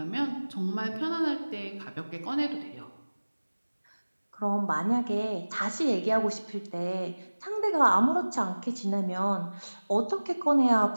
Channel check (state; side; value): inverted; both; correlation -1.00